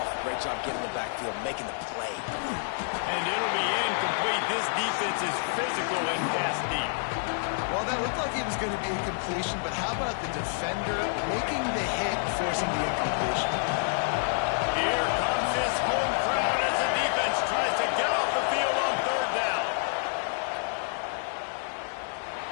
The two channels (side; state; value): right; silent; digital silence